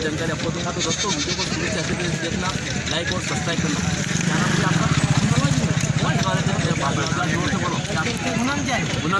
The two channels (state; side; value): identical; both; correlation 1.00